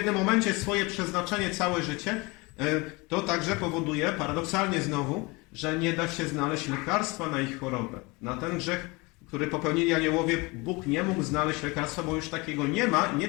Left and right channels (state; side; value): quieter; right; 25.6 dB